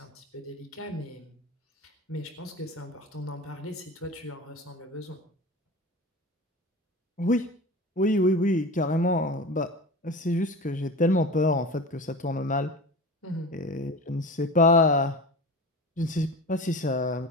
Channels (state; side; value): normal; both; correlation 0.33